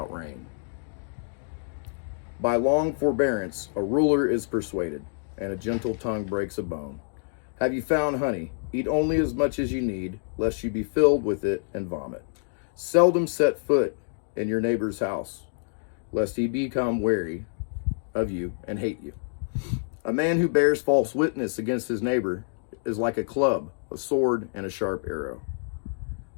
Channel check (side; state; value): right; silent; digital silence